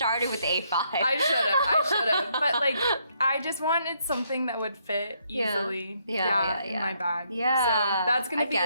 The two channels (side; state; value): both; inverted; correlation -0.73